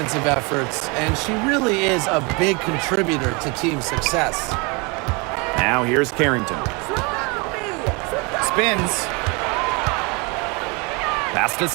efforts, and she really is a big contributor to team success. Now here's Carrington. Spins. Pass to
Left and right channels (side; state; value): left; quieter; 29.7 dB